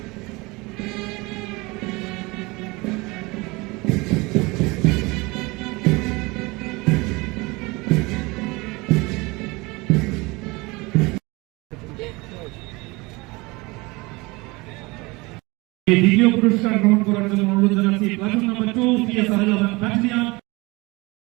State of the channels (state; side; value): quieter; left; 24.3 dB